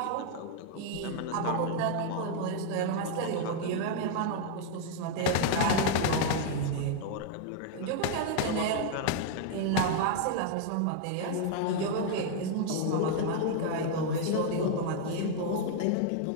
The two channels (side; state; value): both; different; correlation 0.00